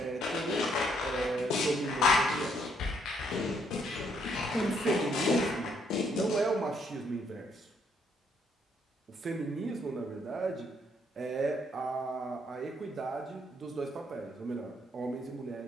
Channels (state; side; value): normal; both; correlation 0.70